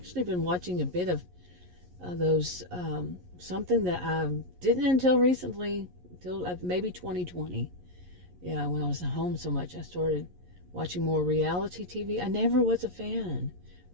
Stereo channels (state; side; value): late; left; 11 ms